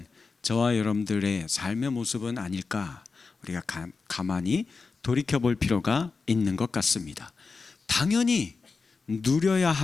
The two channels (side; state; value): right; quieter; 4.5 dB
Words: 저와 여러분들의 삶의 모습은 아닐까, 우리가 가만히 돌이켜볼 필요가 있는 것 같습니다. 당연히 누려야